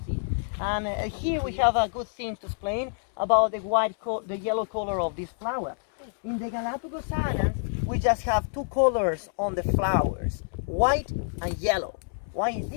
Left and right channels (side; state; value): right; silent; 60 dB below the other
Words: see. And here we have a good thing to explain about the yellow color of this flower. In the Galapagos Islands, we just have two colors on the flowers, white and yellow. Why is